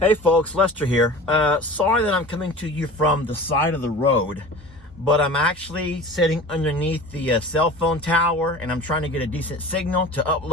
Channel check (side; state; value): both; normal; correlation 0.38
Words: folks, Lester here. Sorry that I'm coming to you from the side of the road, but I'm actually sitting underneath the cell phone tower and I'm trying to get a decent signal to